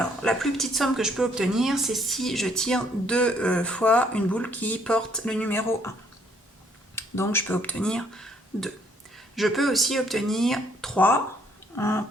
la plus petite somme que je peux obtenir, c'est si je tire 2 fois une boule qui porte le numéro 1. Donc je peux obtenir 2. Je peux aussi obtenir 3 en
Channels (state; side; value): normal; both; correlation 0.66